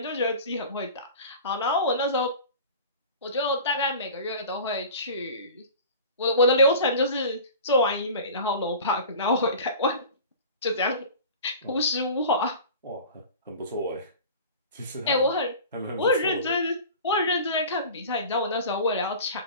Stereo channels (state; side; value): inverted; both; correlation -0.38